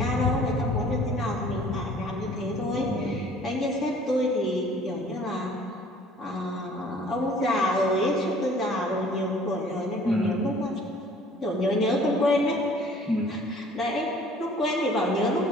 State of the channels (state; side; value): normal; both; correlation 0.53